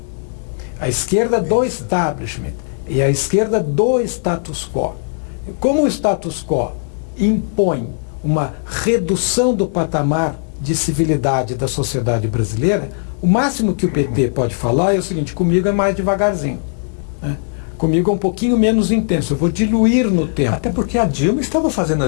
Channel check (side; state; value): right; silent; 57 dB below the other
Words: a esquerda do establishment e a esquerda do status quo. Como o status quo impõe uma redução do patamar de civilidade da sociedade brasileira, o máximo que o PT pode falar é o seguinte: comigo é mais devagarzinho, comigo é um pouquinho menos intenso, eu vou diluir no tempo. Até porque a Dilma estava fazendo